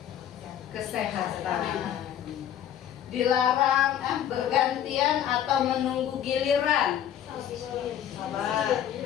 Kesehatan. Dilarang bergantian atau menunggu giliran.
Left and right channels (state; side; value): quieter; right; 10.3 dB